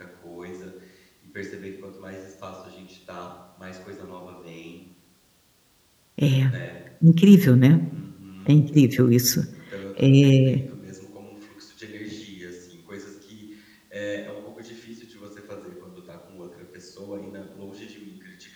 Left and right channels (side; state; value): both; identical; correlation 1.00